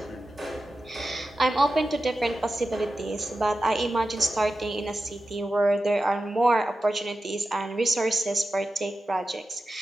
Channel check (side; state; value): both; normal; correlation 0.92